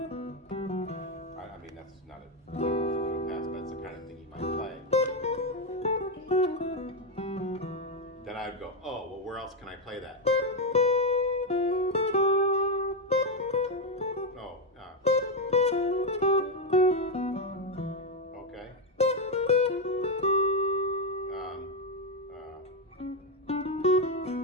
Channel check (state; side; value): normal; both; correlation 0.05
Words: I mean, that's not a Joe Pass, but that's the kind of thing you might play. Then I'd go, oh, well, where else can I play that? Oh, okay.